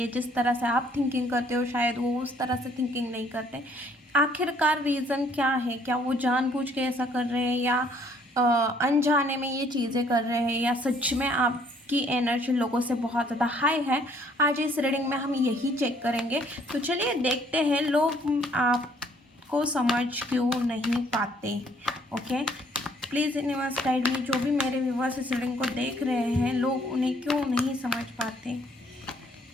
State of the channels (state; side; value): normal; both; correlation 0.63